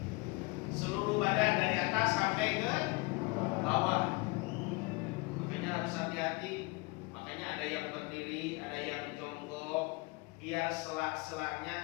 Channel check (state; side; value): quieter; right; 26.8 dB